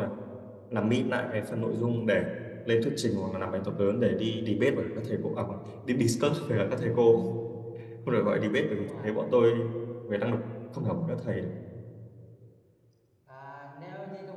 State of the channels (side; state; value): both; identical; correlation 1.00